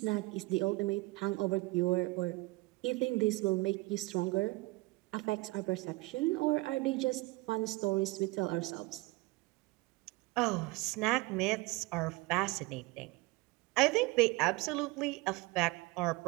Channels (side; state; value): left; quieter; 23.0 dB